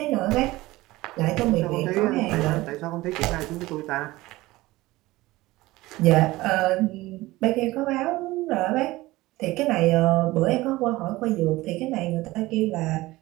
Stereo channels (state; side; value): quieter; left; 19.0 dB